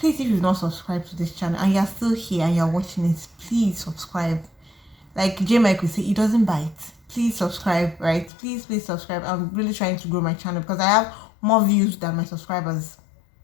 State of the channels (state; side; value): drops out; right; at 8.3 s